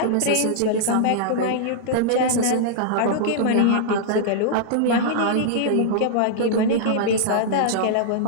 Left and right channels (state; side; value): different; both; correlation -0.01